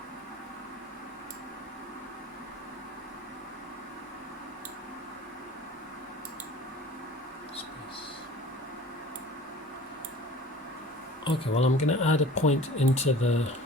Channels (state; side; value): normal; both; correlation 0.44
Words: Okay, well, I'm going to add a point into the